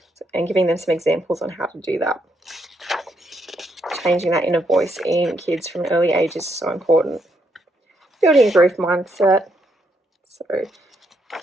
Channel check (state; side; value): normal; both; correlation 0.76